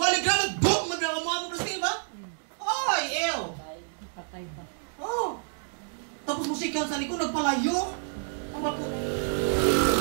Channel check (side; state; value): left; silent; digital silence